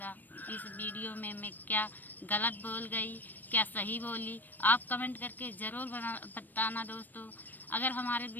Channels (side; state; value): right; late; 0.088 ms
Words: इस वीडियो में मैं क्या गलत बोल गई, क्या सही बोली, आप कमेंट करके ज़रूर बताना दोस्तों। अगर हमारे